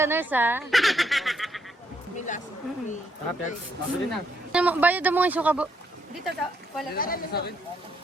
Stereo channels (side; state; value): both; normal; correlation 0.74